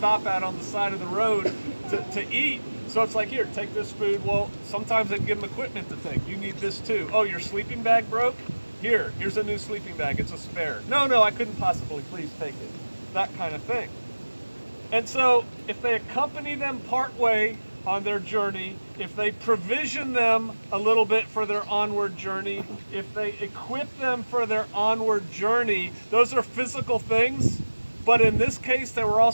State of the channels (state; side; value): inverted; both; correlation -1.00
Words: at on the side of the road to eat. So it's like, here, take this food. Well, sometimes they give them equipment to take. You need this too. Oh, your sleeping bag broke? Here's a new sleeping bag. It's a spare. No, I couldn't possibly. Please take it. That kind of thing. And so if they accompany them partway on their journey, if they provision them a little bit for their onward journey, if they equip them for their onward journey, those are physical things, but in this case, they were